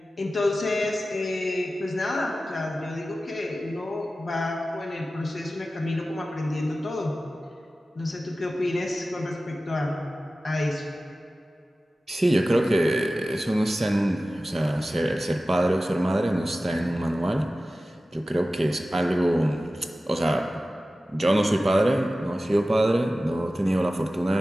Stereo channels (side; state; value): both; normal; correlation 0.95